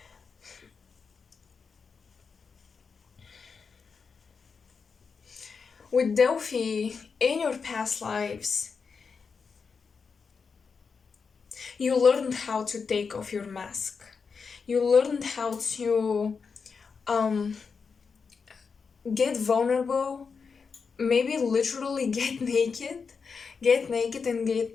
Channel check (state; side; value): quieter; right; 5.4 dB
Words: With Delphi, in your past lives, you learned how to take off your mask. You learned how to get vulnerable, maybe literally get naked and